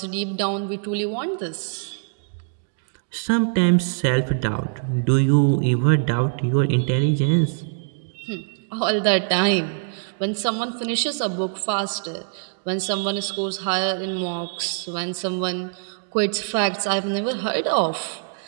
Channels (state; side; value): silent; left; digital silence